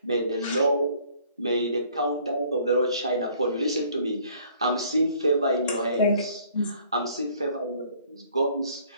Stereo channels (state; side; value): inverted; both; correlation -0.58